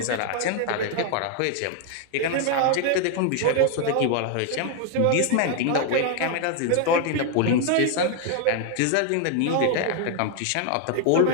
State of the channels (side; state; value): both; different; correlation 0.00